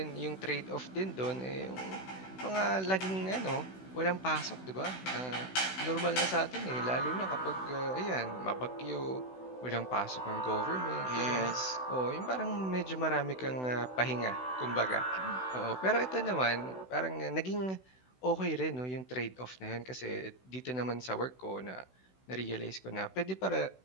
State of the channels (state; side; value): late; right; 16 ms